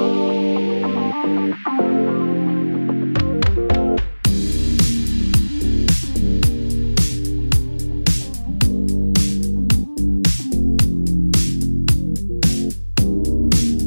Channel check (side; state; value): both; inverted; correlation -1.00